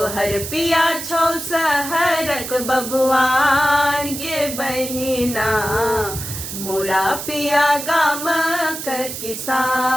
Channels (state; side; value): noise; right; hiss, 7 dB below the sound